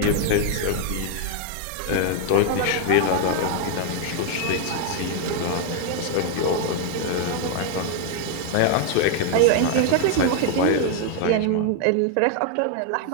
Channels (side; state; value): both; different; correlation 0.00